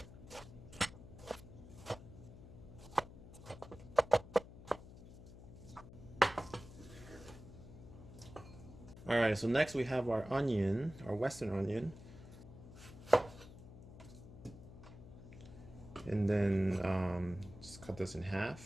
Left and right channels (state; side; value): noise; left; hum, 16 dB below the sound